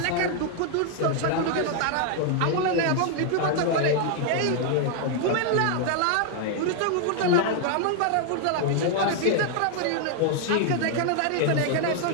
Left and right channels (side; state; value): both; different; correlation 0.00